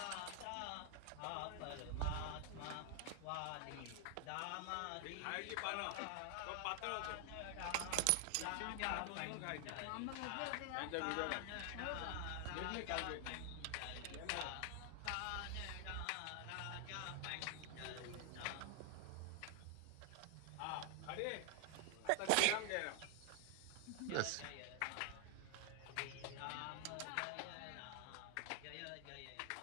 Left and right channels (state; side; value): different; both; correlation 0.00